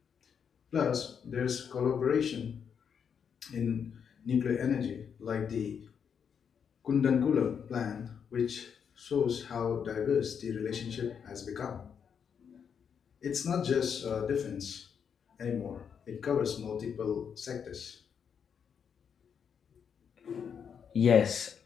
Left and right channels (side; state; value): right; quieter; 7.3 dB